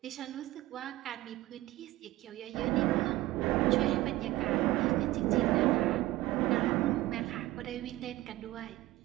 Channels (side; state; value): left; quieter; 17.4 dB